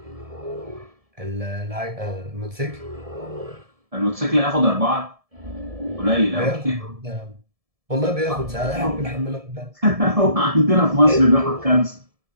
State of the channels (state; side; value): late; left; 1.7 ms